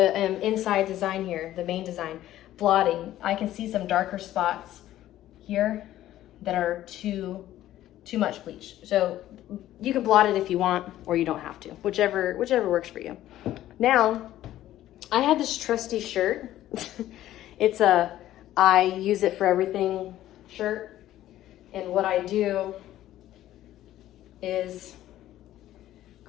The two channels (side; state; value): right; quieter; 13.6 dB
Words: inside design here, the main design, blotting, I can see some darker spots here that are too much bleach. So you can blot it if you want, or you don't have to, whichever works for you. Now, I have this trusty shirt. It's a I use it for everything shirt. And what I do is